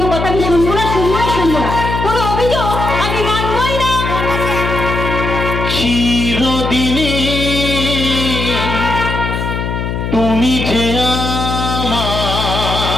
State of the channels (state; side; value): noise; left; hum, 3 dB below the sound